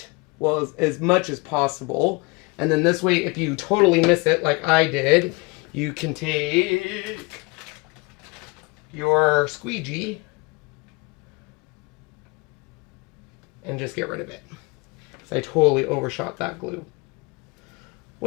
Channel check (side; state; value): right; quieter; 27.2 dB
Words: well, as much as possible. And then this way, if you totally miss it like I did, you can take your squeegee and just get rid of it. So I totally overshot that glue.